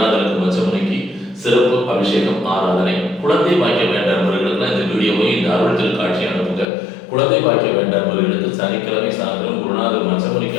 மச்சமனைக்கு சிறப்பு அபிஷேகம் ஆராதனை. குழந்தை பாக்கிய வேண்டாதவர்களுக்கு இந்த வீடியோவை இந்த அருள் திருக்காட்சி அனுப்புங்க. குழந்தை பாக்கிய வேண்டாதவர்களுக்கு சனிக்கிழமை சாயந்தரம் குருநாதர் மச்சமனைக்கு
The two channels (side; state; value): right; drops out; at 6.7 s